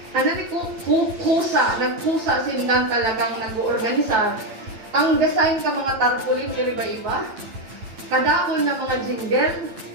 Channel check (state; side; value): late; left; 9.0 ms